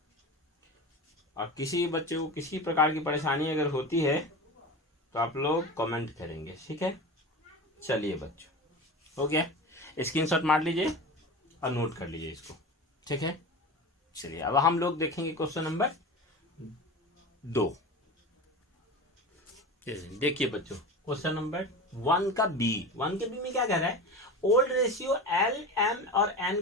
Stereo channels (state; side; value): normal; both; correlation 0.29